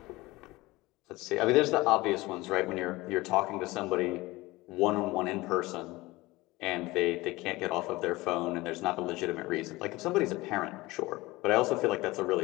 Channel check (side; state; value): right; quieter; 20.5 dB